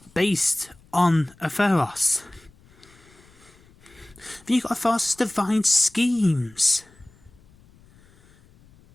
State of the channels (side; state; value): left; noise; rumble, 28 dB below the sound